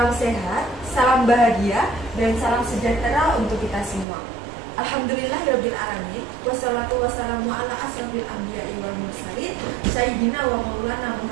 sehat, salam bahagia, dan salam sejahtera untuk kita semua. Alhamdulillahirabbil alamin. Wassalatu wassalamu ala asrofil anbiya'i wal mursalin sayyidina wa maulana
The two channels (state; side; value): drops out; left; at 4.0 s